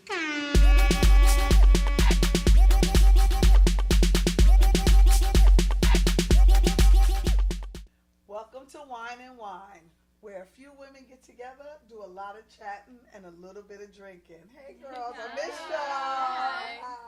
Welcome to Wine and Whine, where a few women get together, do a lot of chatting, and a little bit of drinking. Hey girls, I missed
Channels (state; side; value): identical; both; correlation 1.00